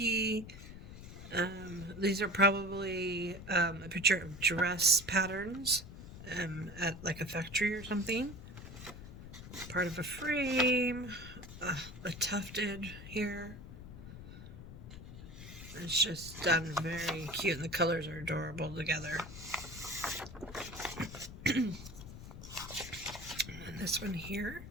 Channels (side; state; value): left; noise; rumble, 13 dB below the sound